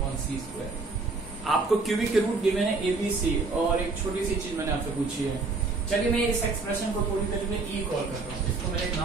1/c square। आपको cubic के root given है a b c, और एक छोटी सी चीज मैंने आपसे पूछी है। चलिए मैं इस एक्सप्रेशन को पूरी तरीके से e कॉल करता हूँ, इसको मैंने एक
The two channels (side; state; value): left; quieter; 3.9 dB